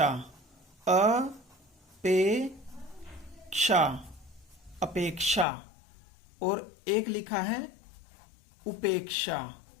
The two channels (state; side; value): drops out; right; at 5.5 s